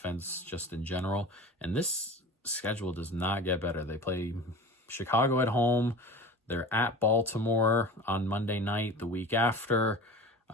just in general. And this schedule does not get better. They play Chicago at home. They're at Baltimore on Monday night the week after.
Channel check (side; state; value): both; normal; correlation 0.35